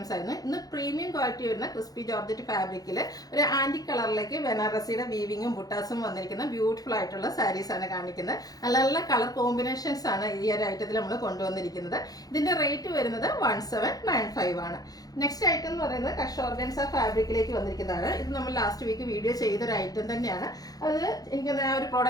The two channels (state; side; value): late; right; 0.18 ms